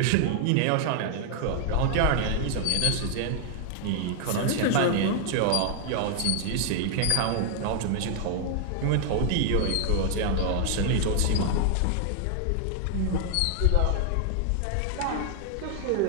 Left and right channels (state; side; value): different; both; correlation 0.00